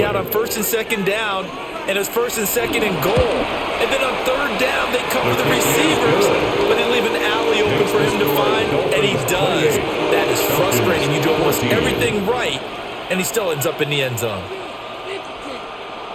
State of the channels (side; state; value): both; identical; correlation 1.00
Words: on first and second down, and it's first and second and goal. And then on third down, they cover the receivers, but they leave an alley open for him to find, and he does. That is frustrating. You do almost everything right, and he still ends up in the end zone.